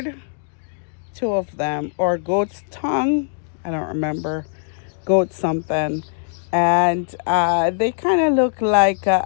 two of them, or goat's tongue. I don't remember. Goat something. And they kind of look like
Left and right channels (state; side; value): silent; right; digital silence